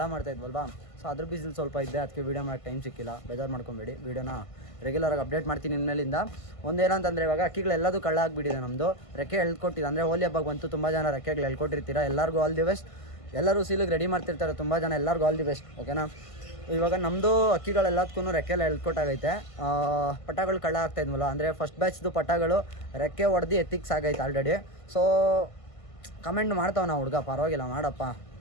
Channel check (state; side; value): late; right; 1.5 ms